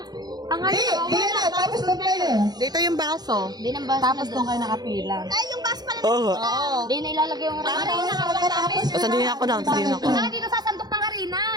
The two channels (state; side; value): late; left; 0.19 ms